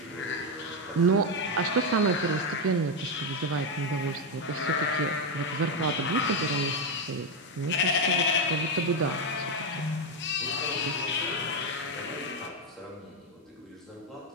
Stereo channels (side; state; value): both; normal; correlation 0.06